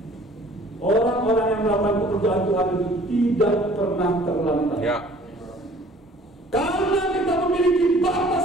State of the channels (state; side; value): normal; both; correlation 0.52